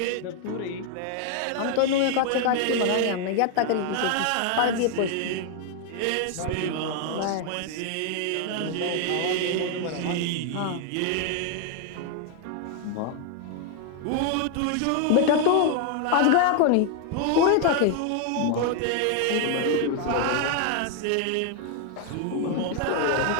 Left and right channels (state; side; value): different; both; correlation 0.01